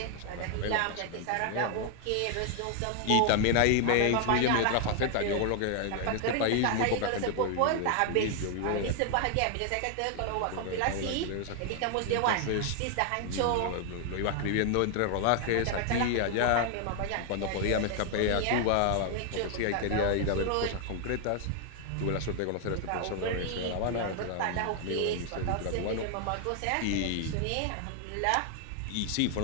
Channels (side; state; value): both; different; correlation 0.00